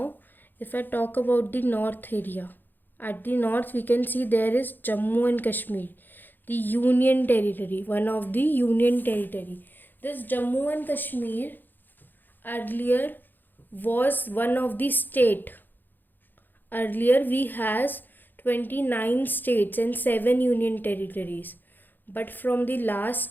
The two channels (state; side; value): late; right; 0.090 ms